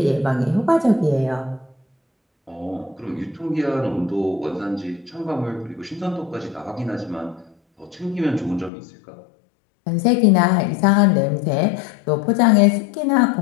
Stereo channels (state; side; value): drops out; right; at 8.7 s